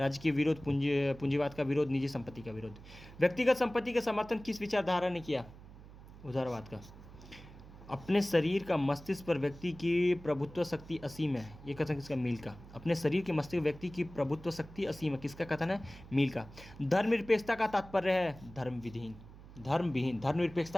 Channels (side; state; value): right; noise; hum, 18 dB below the sound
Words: के विरोध, पूंजीवाद का विरोध, निजी संपत्ति का विरोध। व्यक्तिगत संपत्ति का समर्थन किस विचारधारा ने किया, उदारवाद का। अपने शरीर का मस्तिष्क पर व्यक्ति की प्रभुत्व शक्ति असीम है, ये कथन किसका? मील का। अपने शरीर के मस्तिष्क व्यक्ति की प्रभुत्व शक्ति असीम है, किसका कथन है? मील का। धर्मनिरपेक्षता का तात्पर्य है धर्मविहीन, धर्मविहीन।